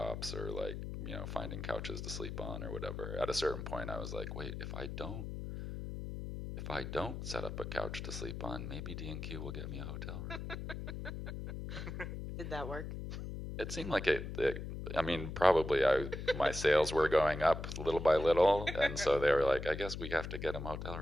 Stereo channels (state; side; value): noise; left; hum, 6 dB below the sound